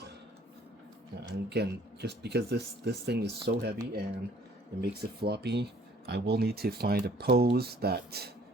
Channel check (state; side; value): normal; both; correlation 0.56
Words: and again, just because this thing is so heavy and it makes it floppy, I will need to find a pose that